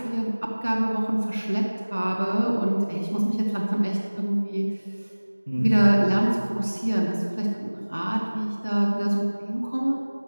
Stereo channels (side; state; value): both; inverted; correlation -1.00